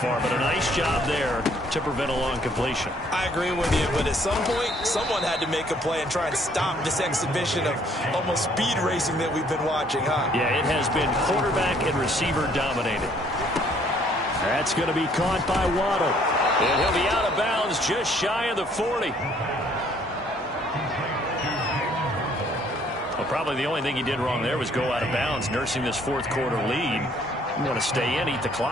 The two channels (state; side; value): normal; both; correlation 0.63